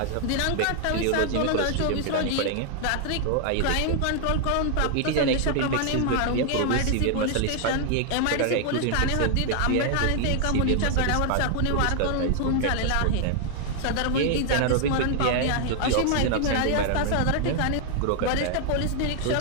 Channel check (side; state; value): both; different; correlation 0.00